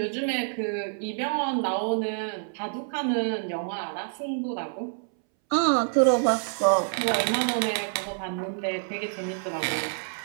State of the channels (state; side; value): silent; left; 60 dB below the other